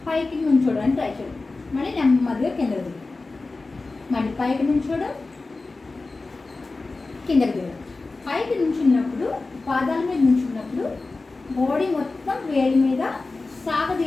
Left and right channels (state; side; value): quieter; right; 3.5 dB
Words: పైకి నుంచోడానికి ట్రై చేయడం. మళ్ళీ నెమ్మదిగా కిందకి దిగడం, మళ్ళీ పైకి నుంచోడం, కిందకి దిగడం. పైకి నుంచున్నప్పుడు, పాదాల మీద నుంచున్నప్పుడు బాడీ మొత్తం వేడి మీద